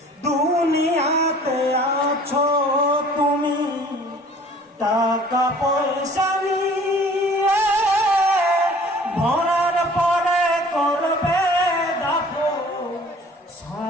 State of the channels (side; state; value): both; normal; correlation 0.50